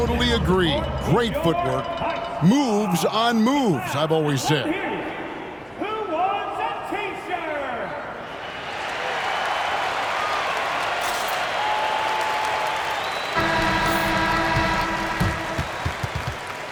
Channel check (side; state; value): both; identical; correlation 1.00